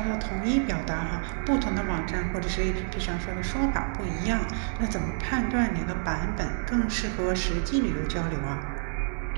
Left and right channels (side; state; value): left; silent; 59 dB below the other